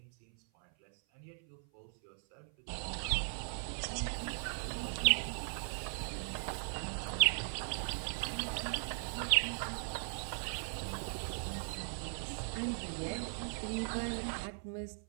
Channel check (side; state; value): left; silent; 52 dB below the other